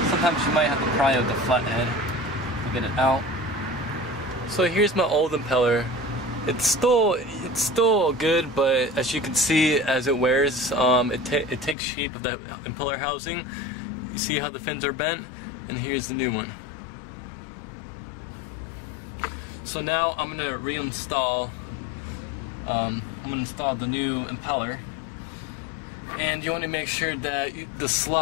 Sometimes you might have to pry out the flathead to get it out. So here's my old impeller. It's still good, but as you can see, as it wears, it takes shape of that impeller housing. You see how the fins are bent, and here's the new one. So now I'm gonna reinstall. I'm gonna install the new impeller, and you want to make sure that the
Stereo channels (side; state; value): right; drops out; at 11.8 s